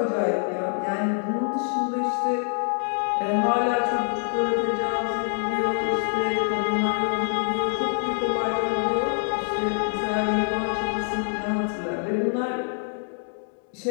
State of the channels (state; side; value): silent; right; 55 dB below the other